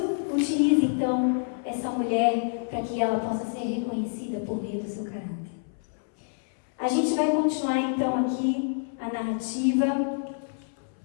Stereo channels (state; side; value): silent; right; 59 dB below the other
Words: utiliza, então, essa mulher para que ela possa ser reconhecida por meio do seu caráter. A gente vai continuar, então, aqui a narrativa.